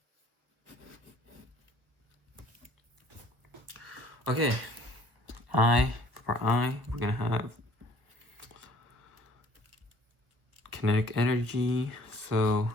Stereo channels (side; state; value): left; late; 1.4 ms